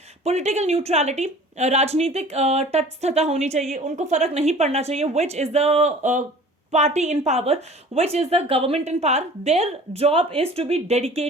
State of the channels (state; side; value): normal; both; correlation 0.46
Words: पॉलिटिकल न्यूट्रलिटी, राजनीतिक तटस्थता होनी चाहिए, उनको फर्क नहीं पड़ना चाहिए which is the party in power, which is the government in power. Their job is to be